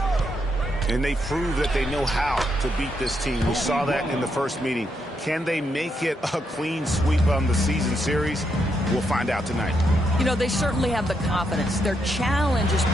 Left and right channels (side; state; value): both; normal; correlation 0.79